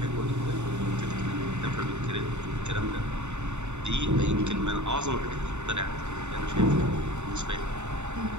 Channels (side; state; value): left; late; 0.83 ms